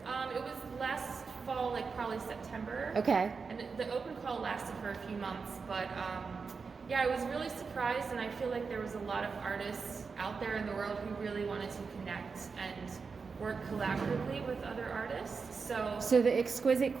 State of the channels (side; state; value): left; quieter; 5.0 dB